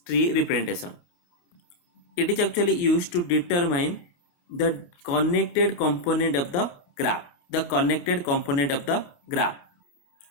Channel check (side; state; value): right; late; 28 ms